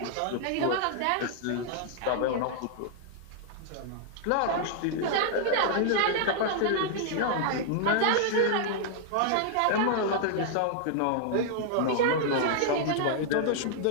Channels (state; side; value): different; both; correlation -0.01